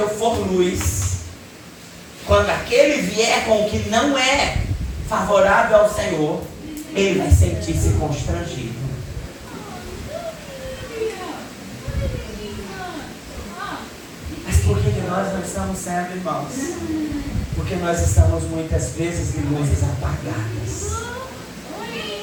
for luz, quando aquele vier com o que não é favorável ao Senhor, ele vai sentir-se constrangido. nós não estamos sendo, irmãos? Porque nós estamos muitas vezes de luzes apagadas.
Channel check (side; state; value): both; identical; correlation 1.00